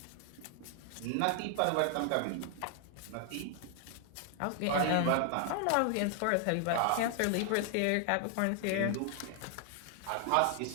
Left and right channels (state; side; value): different; both; correlation 0.00